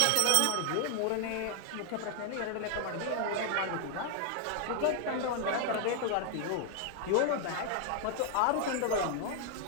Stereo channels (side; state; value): both; different; correlation 0.00